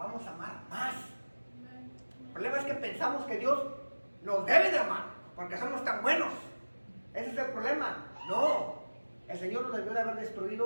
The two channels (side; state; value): both; inverted; correlation -1.00